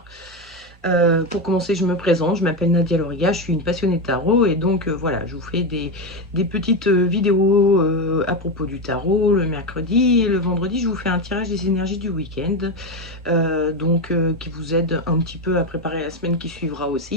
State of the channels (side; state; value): both; normal; correlation 0.13